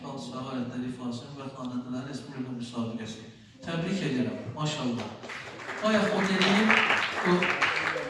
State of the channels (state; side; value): identical; both; correlation 1.00